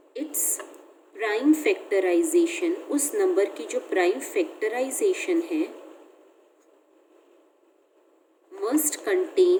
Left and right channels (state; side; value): identical; both; correlation 1.00